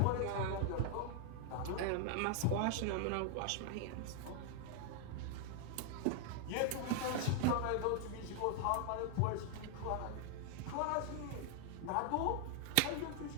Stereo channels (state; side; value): different; both; correlation 0.00